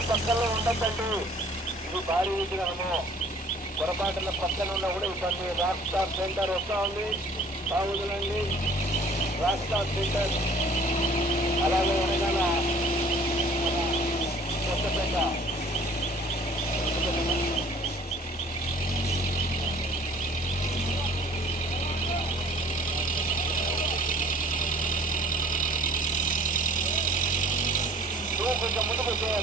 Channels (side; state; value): both; normal; correlation 0.52